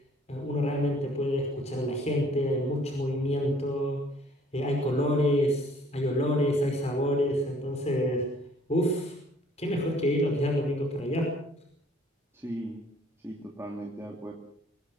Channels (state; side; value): normal; both; correlation 0.58